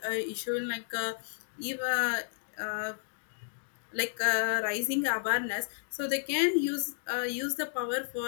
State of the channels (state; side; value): silent; right; digital silence